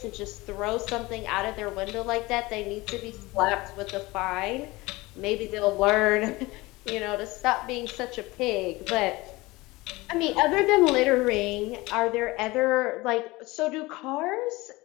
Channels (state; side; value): quieter; right; 21.3 dB